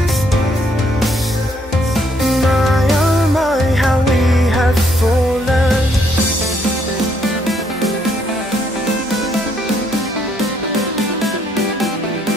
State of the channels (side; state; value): both; normal; correlation 0.70